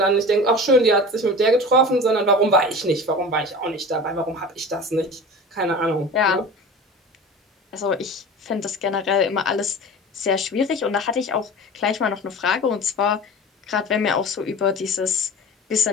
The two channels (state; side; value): normal; both; correlation 0.36